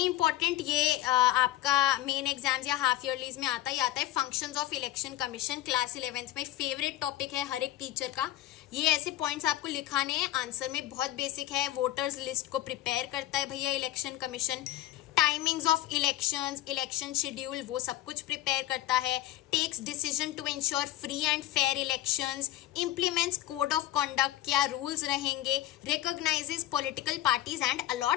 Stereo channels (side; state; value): right; quieter; 14.5 dB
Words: इंपॉर्टेंट, ये आपका मेन एग्जाम्स या हाफ ईयरलीज में आता है functions of election commission. Class 11th में फेवरेट टॉपिक है हर एक टीचर का। ये ऐसे पॉइंट्स आपको लिखाने हैं, आंसर में बहुत बेसिक है। वोटर्स लिस्ट को प्रिपेयर करता है भैया election commission, timings of elections, election schedule, वो सब कुछ प्रिपेयर करता है। Takes decision to ensure free and fair elections, implements code of conduct, क्या रूल्स रहेंगे, recognises political parties and